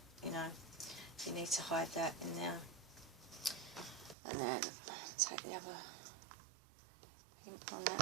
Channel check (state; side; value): drops out; left; at 4.2 s